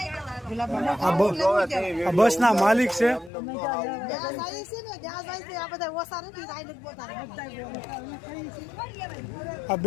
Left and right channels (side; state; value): right; drops out; at 3.3 s